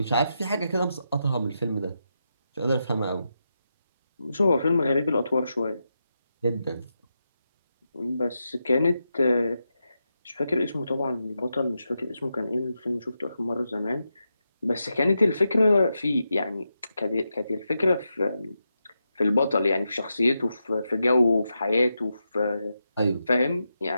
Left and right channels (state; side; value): inverted; both; correlation -0.87